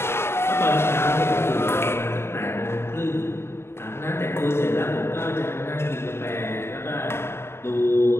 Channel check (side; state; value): right; late; 0.12 ms